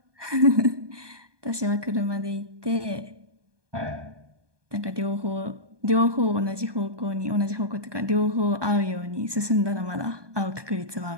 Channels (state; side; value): late; left; 1.2 ms